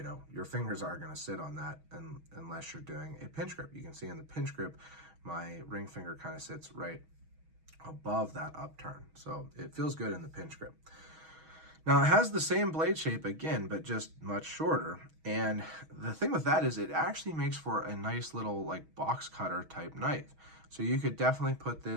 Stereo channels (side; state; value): left; late; 6.3 ms